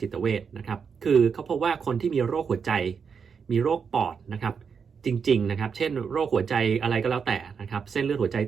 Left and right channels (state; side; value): quieter; left; 6.2 dB